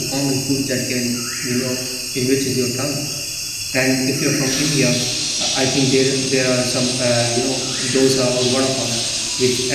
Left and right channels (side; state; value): both; identical; correlation 1.00